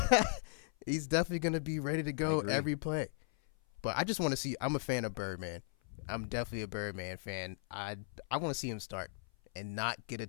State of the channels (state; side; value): silent; right; 53 dB below the other